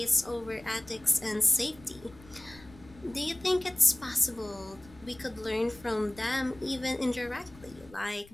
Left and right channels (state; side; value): noise; left; rumble, 22 dB below the sound